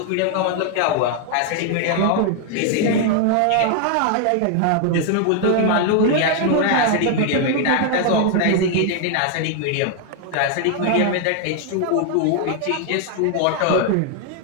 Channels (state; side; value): different; both; correlation 0.00